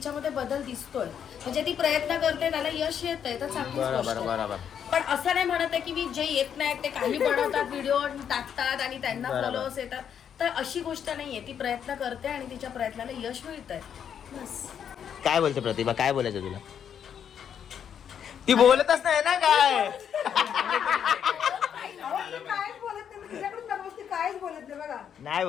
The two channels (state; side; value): quieter; right; 8.4 dB